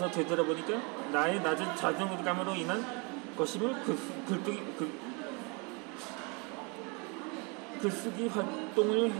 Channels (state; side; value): quieter; left; 31.5 dB